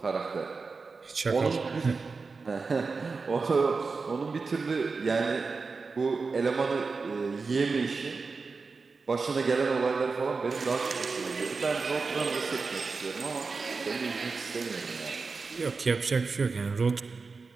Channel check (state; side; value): quieter; left; 4.4 dB